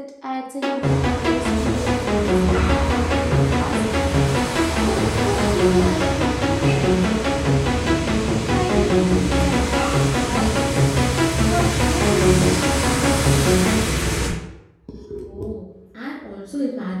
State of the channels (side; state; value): both; identical; correlation 1.00